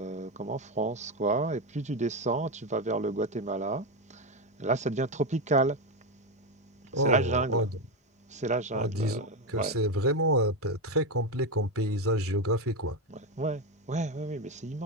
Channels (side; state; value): both; normal; correlation 0.12